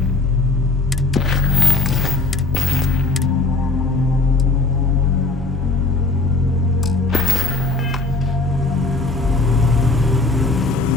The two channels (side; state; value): right; quieter; 3.3 dB